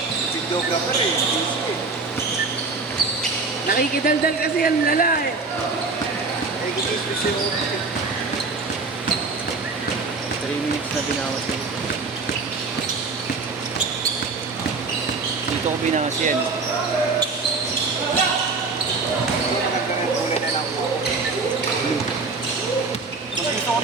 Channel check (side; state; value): left; quieter; 4.1 dB